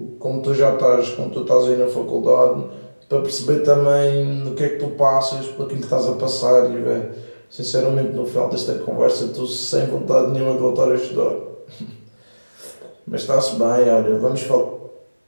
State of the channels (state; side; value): inverted; both; correlation -1.00